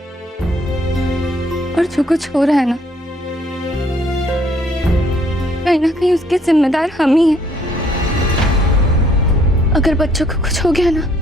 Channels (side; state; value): both; normal; correlation 0.64